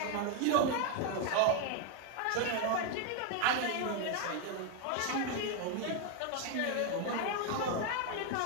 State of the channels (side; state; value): both; different; correlation 0.01